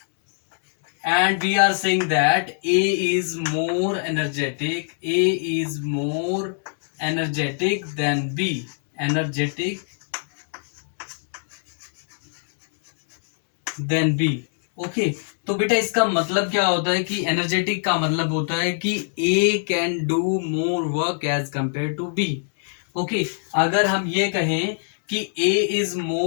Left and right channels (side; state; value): right; silent; digital silence